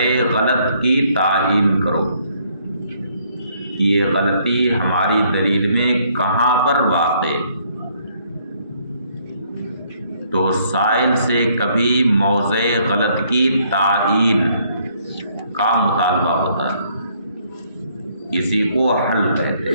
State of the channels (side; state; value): both; inverted; correlation -0.67